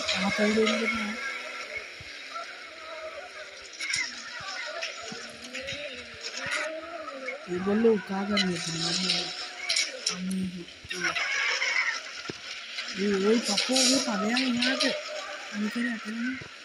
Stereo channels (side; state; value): both; identical; correlation 1.00